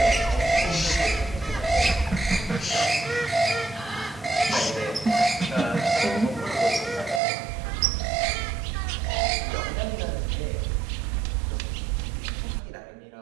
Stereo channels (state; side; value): drops out; left; at 7.2 s